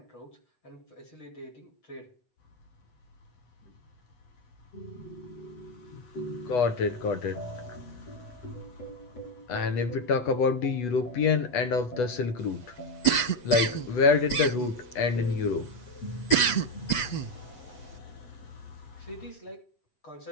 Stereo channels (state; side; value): late; right; 8.2 ms